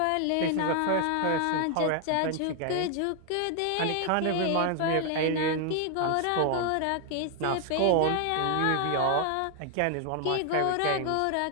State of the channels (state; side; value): different; both; correlation 0.00